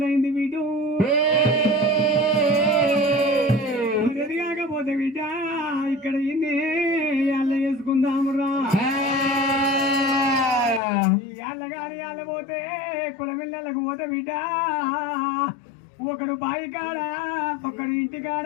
వీడు. ఎదిగాకపోతే బిడ్డ ఇక్కడ ఇన్ని అల్ల వేసుకుందామురా. ఈ అల్లగాని అల్ల పోతే కులమిల్లలకు పోతే బిడ్డ ఒకడు బాయి కాడ, ఒకడు ఇంటి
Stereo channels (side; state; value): right; drops out; at 10.8 s